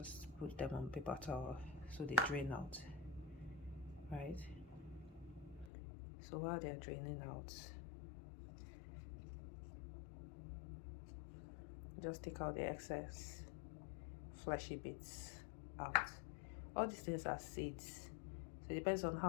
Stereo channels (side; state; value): right; drops out; at 5.7 s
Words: put them on paper towel so they drain out, right? So while they're draining out, just take out the excess fleshy bits out. All these things are seeds, so it depends on